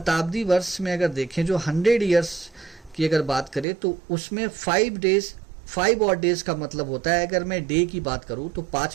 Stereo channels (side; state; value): left; drops out; at 3.7 s